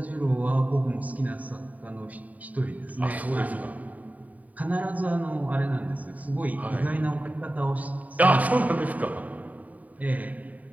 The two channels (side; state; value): left; late; 0.072 ms